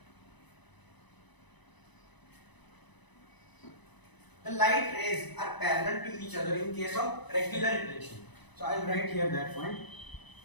the light rays are parallel to each other in case of regular reflection. So I will write here that point.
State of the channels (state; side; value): late; right; 1.0 ms